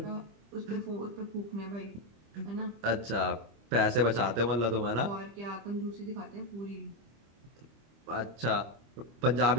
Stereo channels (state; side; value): late; left; 25 ms